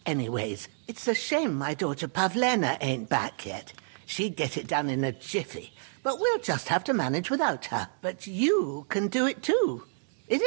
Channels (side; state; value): left; silent; digital silence